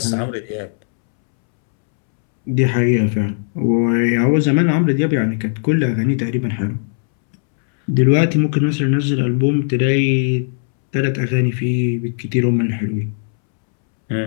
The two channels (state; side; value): silent; right; 68 dB below the other